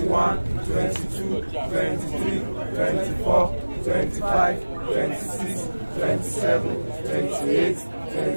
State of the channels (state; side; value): inverted; both; correlation -1.00